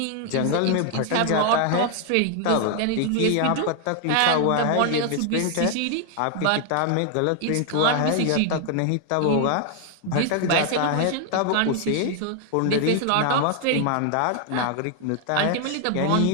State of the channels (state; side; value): different; both; correlation 0.00